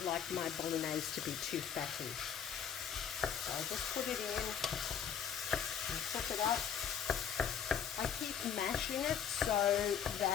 like my bolognese to be too fatty. So I just put it in and cook it up. I keep mashing it so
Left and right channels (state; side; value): quieter; right; 8.2 dB